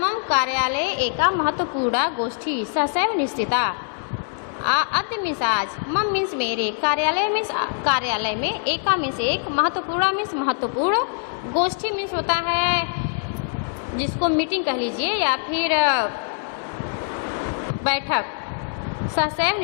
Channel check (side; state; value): right; silent; 63 dB below the other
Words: कार्यालय एका महत्वपूर्ण गोष्ठी ससैव निश्चिता। अद्य मीन्स आज, मम मीन्स मेरे, कार्यालय मीन्स कार्यालय में, एका मीन्स एक, महत्वपूर्ण मीन्स महत्वपूर्ण, गोष्ठी मीन्स होता है जिसको मीटिंग कह लीजिए या फिर बैठक। सहसैव